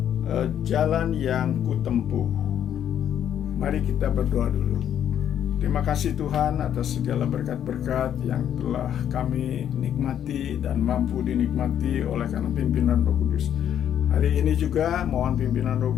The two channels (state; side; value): quieter; right; 9.8 dB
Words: Jalan yang Kutempuh. Mari kita berdoa dulu. Terima kasih Tuhan atas segala berkat-berkat yang telah kami nikmati dan mampu dinikmati oleh karena pimpinan Roh Kudus. Hari ini juga mohon pimpinan Roh